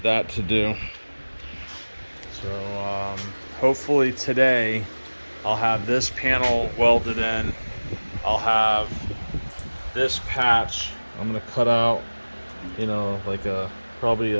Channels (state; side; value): inverted; both; correlation -1.00